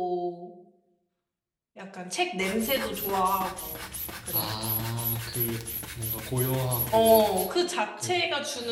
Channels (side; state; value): both; identical; correlation 1.00